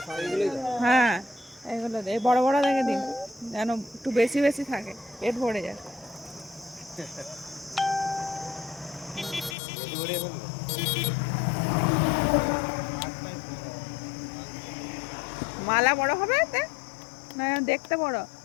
হ্যাঁ এগুলো এই বড় বড় দেখে দিন, যেন একটু বেশি বেশি থাকে, পেট ভরে যায়। মালা বড় হবে এতে না দেখতে বড়?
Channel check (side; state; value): right; drops out; at 9.6 s